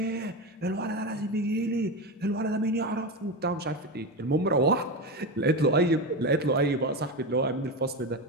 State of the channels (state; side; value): normal; both; correlation 0.18